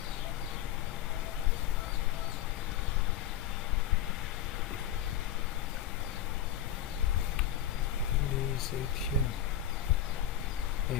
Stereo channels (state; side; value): quieter; right; 10.4 dB